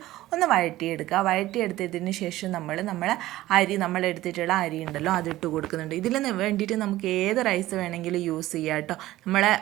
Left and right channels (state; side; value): quieter; left; 16.0 dB